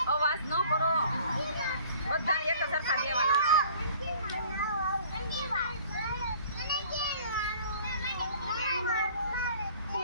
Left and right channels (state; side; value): inverted; both; correlation -0.52